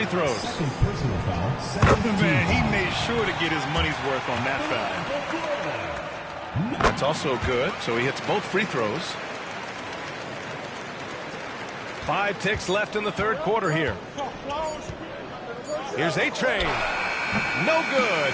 throws. Man, he made sure to get his money's worth on that foul. That's also good, so he hits both free throws. 5 ticks left in the third quarter here. Here's A-Train. No good.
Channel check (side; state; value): both; identical; correlation 1.00